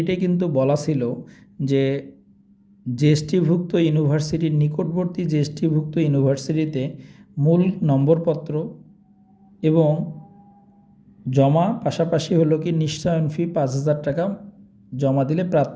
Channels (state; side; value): identical; both; correlation 1.00